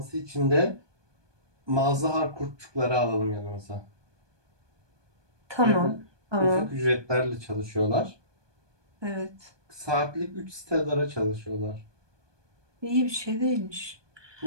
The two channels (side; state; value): left; late; 1.2 ms